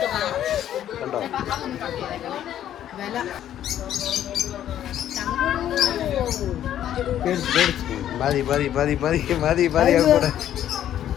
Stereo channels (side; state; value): right; quieter; 11.2 dB